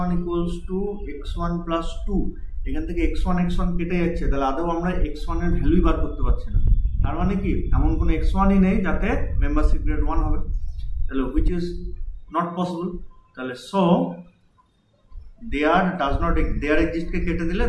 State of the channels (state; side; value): identical; both; correlation 1.00